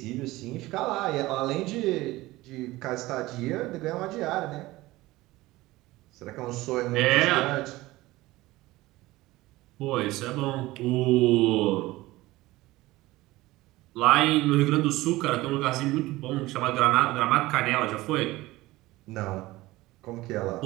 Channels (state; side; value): quieter; left; 18.7 dB